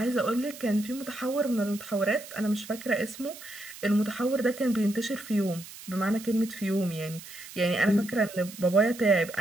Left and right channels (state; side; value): noise; right; hiss, 15 dB below the sound